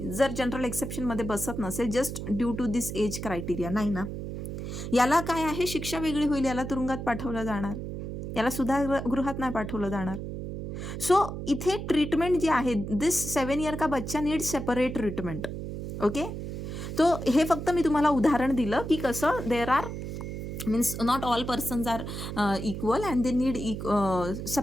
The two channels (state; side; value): noise; right; hum, 6 dB below the sound